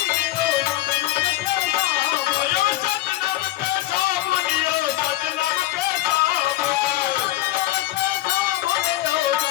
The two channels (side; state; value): right; quieter; 16.0 dB